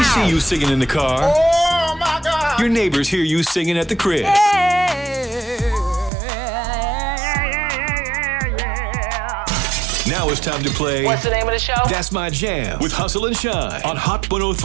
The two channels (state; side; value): drops out; left; at 6.1 s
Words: see you singing in the car. Oh my God! Your neighbors hear you singing at the crib. Now it's time to play. What's the name of the show? That's My Jam with Hustle and Shine on Hot